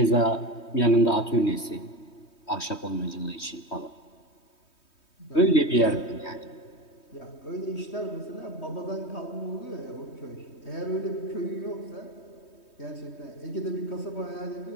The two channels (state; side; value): late; right; 3.2 ms